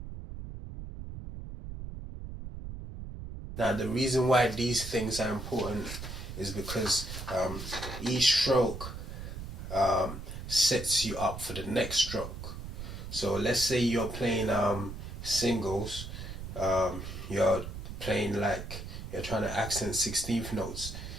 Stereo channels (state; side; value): noise; right; rumble, 9 dB below the sound